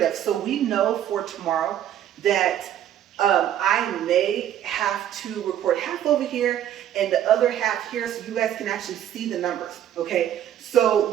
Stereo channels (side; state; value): left; quieter; 10.9 dB